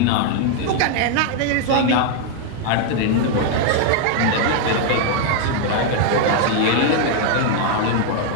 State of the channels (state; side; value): different; both; correlation 0.00